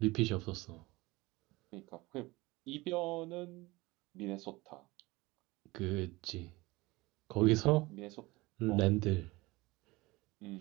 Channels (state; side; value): quieter; left; 21.6 dB